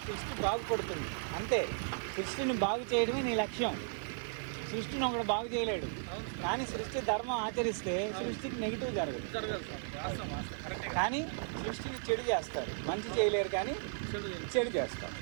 సృష్టి బాగుపడుతుంది. అంతే, సృష్టిని బాగు చేయడమే నీ లక్ష్యం. సృష్టిని ఒకడు బాగు చేయలేడు, కానీ సృష్టి ధర్మం ఆచరిస్తే సృష్టికి నెగిటివ్ జరగదు. కానీ సృష్టిని చెడు చేస్తారు, మంచి చేయలేరు కానీ చెడు చేస్తారు.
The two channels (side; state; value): left; silent; 54 dB below the other